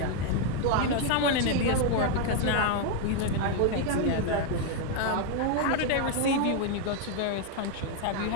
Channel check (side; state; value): both; different; correlation 0.01